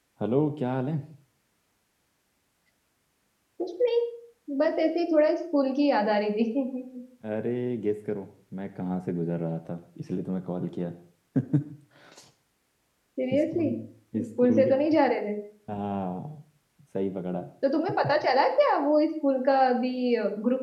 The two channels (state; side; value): identical; both; correlation 1.00